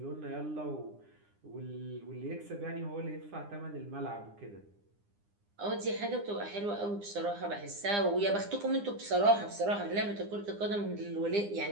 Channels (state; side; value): late; left; 9.8 ms